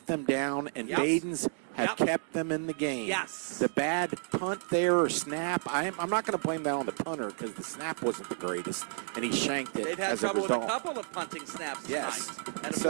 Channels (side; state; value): left; silent; 57 dB below the other